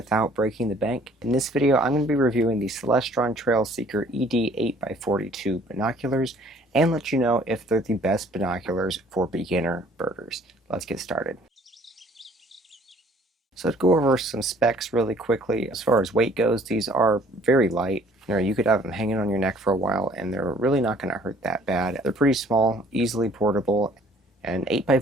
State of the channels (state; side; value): normal; both; correlation 0.57